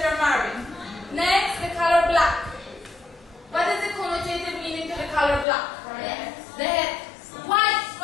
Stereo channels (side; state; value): right; drops out; at 5.5 s